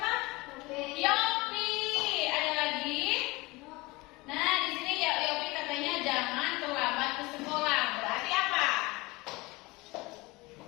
Yopi. Ada lagi? Nah, di sini ya Yopi katanya jangan terlambat ke sekolah. Berarti apa?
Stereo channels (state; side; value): quieter; right; 22.9 dB